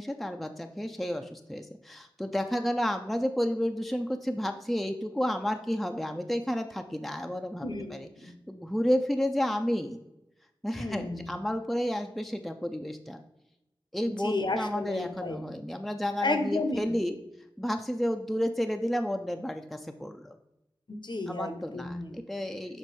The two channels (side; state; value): both; normal; correlation 0.92